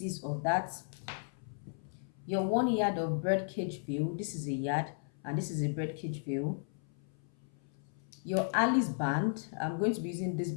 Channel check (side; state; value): right; silent; 54 dB below the other